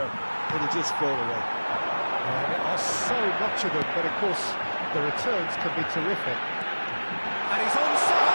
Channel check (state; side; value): inverted; both; correlation -1.00